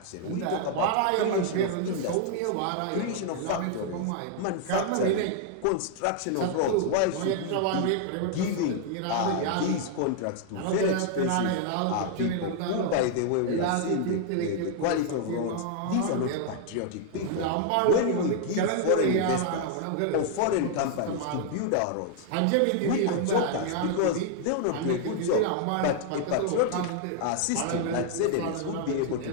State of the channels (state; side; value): different; both; correlation 0.00